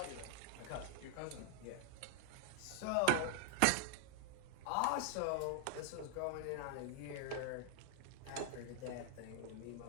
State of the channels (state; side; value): different; both; correlation 0.00